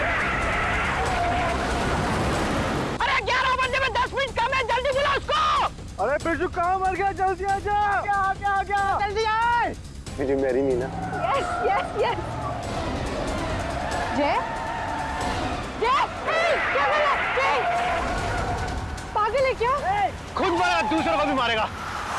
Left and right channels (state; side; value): identical; both; correlation 1.00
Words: अरे 11 बजे में 10 मिनट कम है, जल्दी बुला उसको। अरे बिरजू कहाँ मर गया? जल्दी आ जा। क्या जल्दी आए। Will you marry me ना? Yes yes yes. जय जय क्या बोला? जय पागल है क्या? खुद मारा, दूसरों को भी मारेगा।